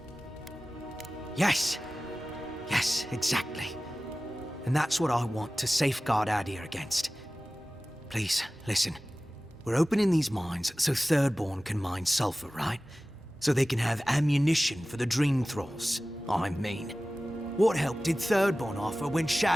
Yes! Yes, exactly. And that's what I want to safeguard Adir against. Please, listen. We're opening these mines so Thirdborn can mine sulfur, right? So they can have ammunition for the Dream Thralls. I mean. What help did Thirdborn offer when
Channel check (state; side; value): normal; both; correlation 0.97